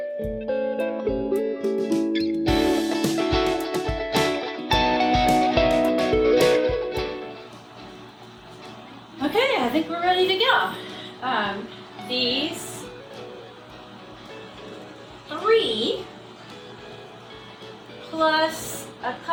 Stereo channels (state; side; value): identical; both; correlation 1.00